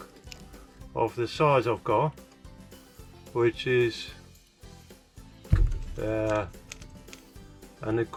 of the size I've got, which is and it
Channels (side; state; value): both; identical; correlation 1.00